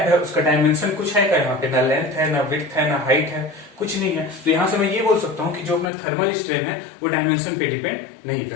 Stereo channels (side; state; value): right; drops out; at 5.9 s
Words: है उसका डायमेंशन कुछ है क्या, यहाँ पे ना लेंथ है, ना विड्थ है, ना हाइट है, कुछ नहीं है। तो यहां से मैं ये बोल सकता हूँ कि जो अपना थर्मल स्ट्रेन है वो डायमेंशन पे डिपेंड नहीं